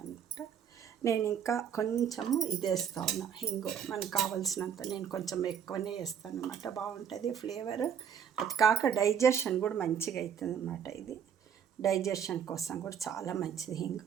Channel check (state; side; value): quieter; left; 8.1 dB